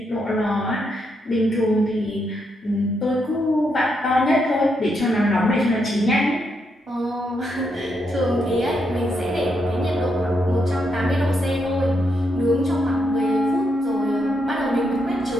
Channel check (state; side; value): normal; both; correlation 0.80